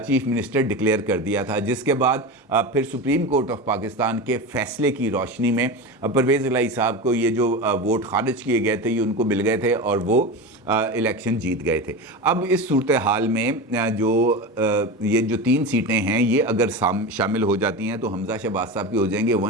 मिनिस्टर डिक्लेयर कर दिया था। जिसके बाद फिर सुप्रीम कोर्ट ऑफ पाकिस्तान के फ़ैसले की रोशनी में परवेज़ इलाही साहब को ये जो वोट खारिज किए गए थे ये उनको मिल गए थे और वो इलेक्शन जीत गए थे। अब इस सूरत हाल में ये जो 3 सीटें हैं ये अगर शामिल हो जाती हैं तो हमजा शहबाज साहब की हो जाएंगे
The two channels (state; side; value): normal; both; correlation 0.24